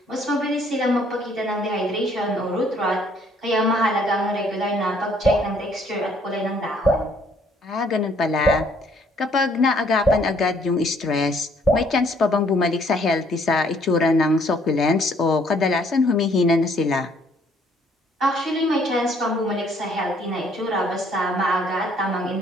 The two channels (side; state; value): both; normal; correlation 0.63